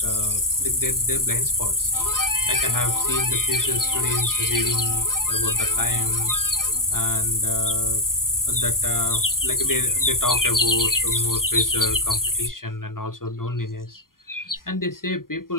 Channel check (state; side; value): late; right; 0.91 ms